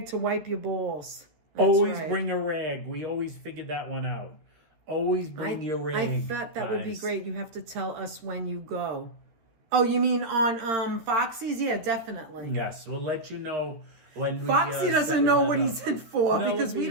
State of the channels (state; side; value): late; left; 13 ms